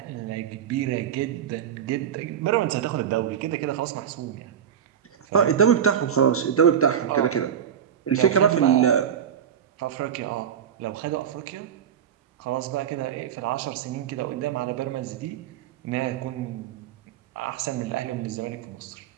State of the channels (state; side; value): quieter; left; 8.9 dB